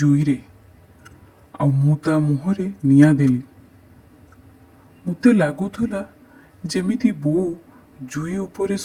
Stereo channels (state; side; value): identical; both; correlation 1.00